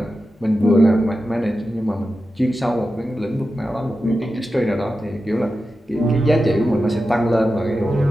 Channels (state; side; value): normal; both; correlation 0.91